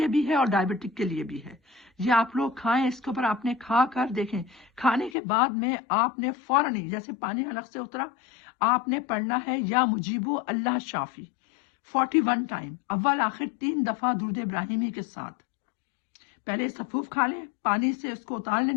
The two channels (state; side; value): drops out; right; at 5.2 s